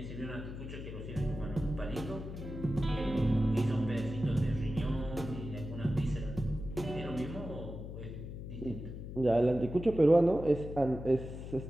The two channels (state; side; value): noise; left; hum, 9 dB below the sound